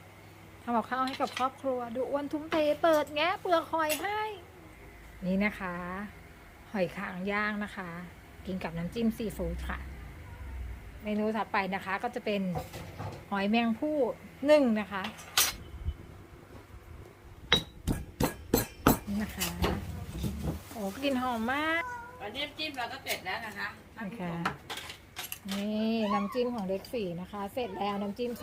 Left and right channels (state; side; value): identical; both; correlation 1.00